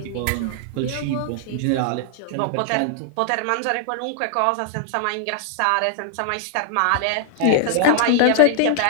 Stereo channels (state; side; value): different; both; correlation 0.00